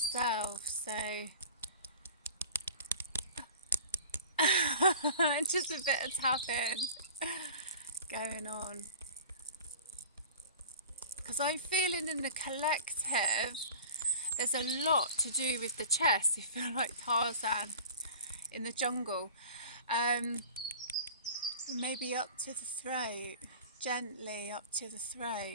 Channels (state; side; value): inverted; both; correlation -0.40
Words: So just a bit of tapping going on. Because I'm feeling in the collective, there's a lot to do with the chest. You feel like Tarzan in the jungle. Maybe up to the throat, gently up to the